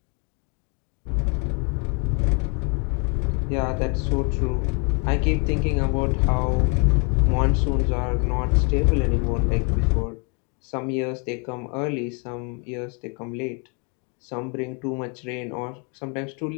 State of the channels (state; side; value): quieter; right; 35.3 dB